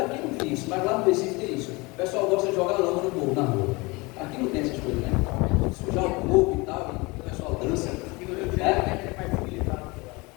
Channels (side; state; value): right; quieter; 25.2 dB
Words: não tem isso, mas lá no Recife tem isso. O pessoal gosta de jogar lama no povo, na rua. Aqui não tem essas coisas, né? Sujar o corpo e tal, e o pessoal dança.